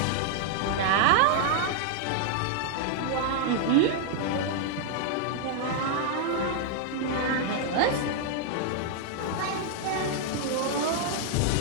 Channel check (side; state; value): both; different; correlation 0.00